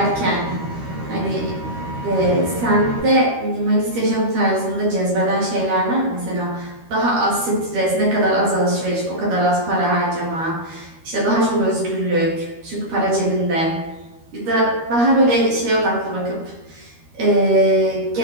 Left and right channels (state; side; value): late; left; 13 ms